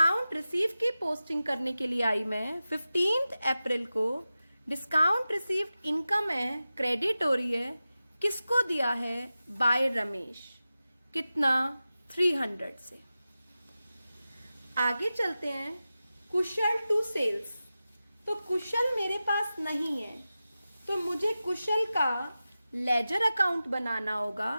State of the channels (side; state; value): both; inverted; correlation -0.94